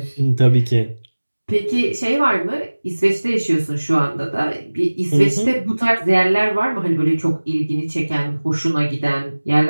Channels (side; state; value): both; inverted; correlation -1.00